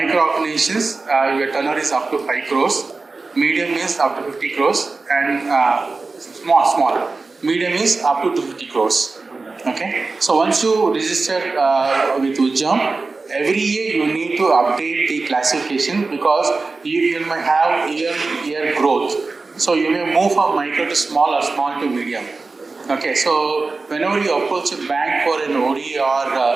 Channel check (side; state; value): left; quieter; 3.8 dB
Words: organizations, your turnover is up to 5 crores, medium is up to 50 crores, and small. Medium is up to 250 crores. Okay, so once you register with Ujjam, every year you need to update the classification because you may have year growth. So you may move from micro to small or small to medium. Okay, so whenever you approach a bank for an OD or